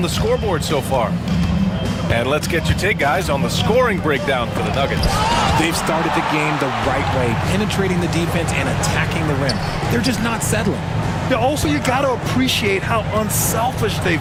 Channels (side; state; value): both; identical; correlation 1.00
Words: the scoreboard so far. And let's get your take, guys, on the scoring breakdown for the Nuggets. They've started the game the right way, penetrating the defense and attacking the rim. They're just not settling. Yeah, also, you got to appreciate how unselfish